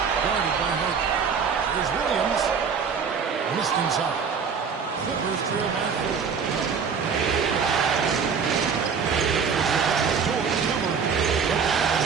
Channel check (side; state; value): left; quieter; 6.1 dB